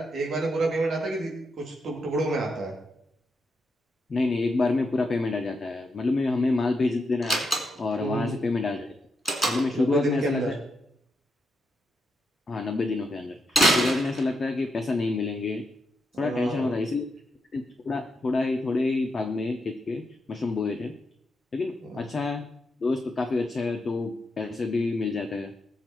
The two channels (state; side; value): normal; both; correlation 0.83